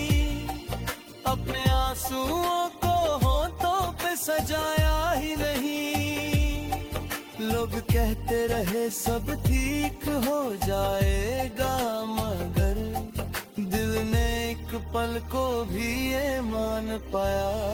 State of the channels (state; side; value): identical; both; correlation 1.00